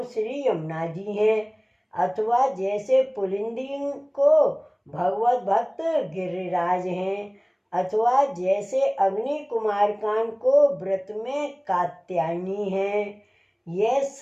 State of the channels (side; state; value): both; identical; correlation 1.00